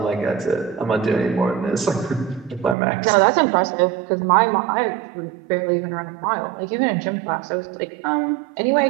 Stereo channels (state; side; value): drops out; left; at 2.8 s